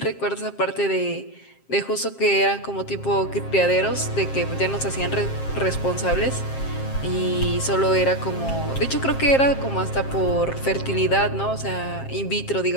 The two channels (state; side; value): late; right; 7.5 ms